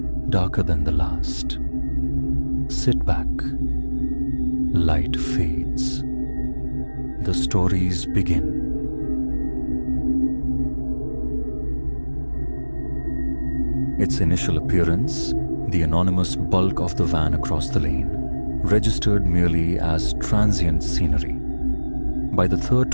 darker than the last. Sit back. Light fades. The stories begin. Its initial appearance, the anonymous bulk of the van across the lane, registered merely as transient scenery. By the third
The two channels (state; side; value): inverted; both; correlation -1.00